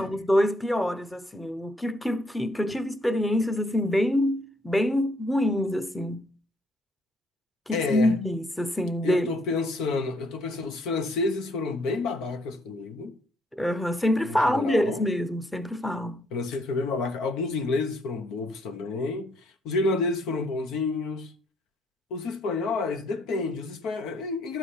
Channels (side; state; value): both; normal; correlation 0.69